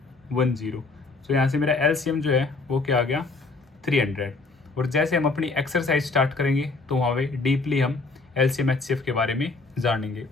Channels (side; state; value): right; quieter; 3.8 dB